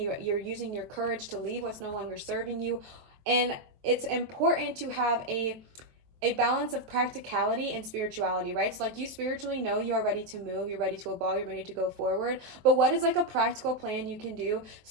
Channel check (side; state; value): left; late; 23 ms